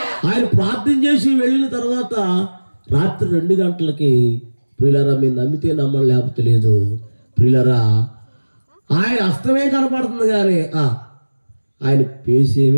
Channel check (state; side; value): inverted; both; correlation -1.00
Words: ఆయన ప్రార్థన చేసి వెళ్ళిన తర్వాత రాత్రి 2 గంటలకి ప్రియులారా, మీరు నమ్మితే నమ్మడం లేకపోతే లేదు ప్రియులారా, ఆయన హస్తమే కనపడుతుంది కానీ ఆయన